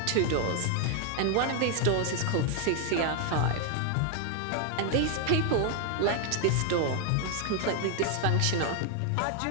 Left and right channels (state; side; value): different; both; correlation 0.00